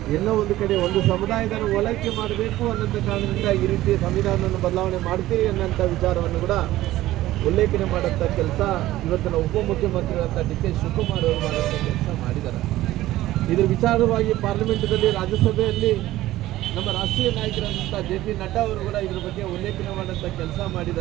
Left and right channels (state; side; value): quieter; left; 15.6 dB